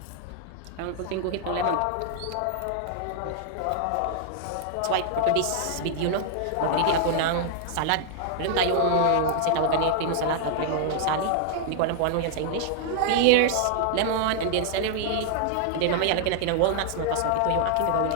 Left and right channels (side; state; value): both; different; correlation 0.00